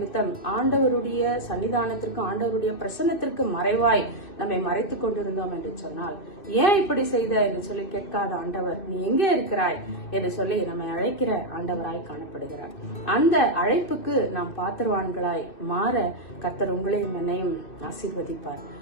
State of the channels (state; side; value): late; right; 2.6 ms